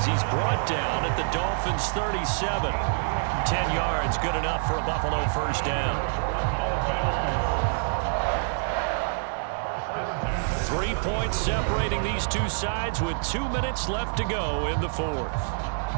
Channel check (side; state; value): left; silent; 58 dB below the other